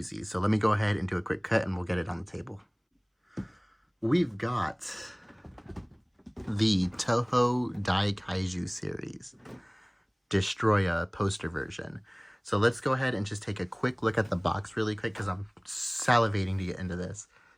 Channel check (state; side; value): identical; both; correlation 1.00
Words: So let me go ahead and do a quick cut and we'll get it on the table. We've got the Toho Daikaiju series, Destroyah poster version. So let's go ahead and just take a quick look at the box really quick because I'm salivating to get into this.